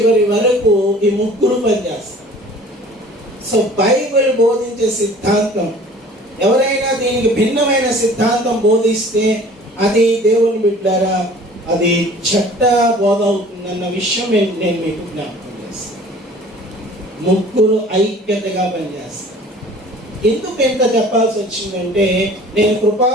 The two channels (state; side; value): normal; both; correlation 0.48